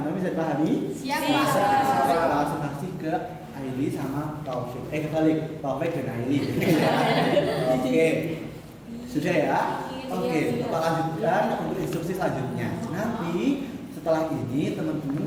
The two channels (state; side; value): identical; both; correlation 1.00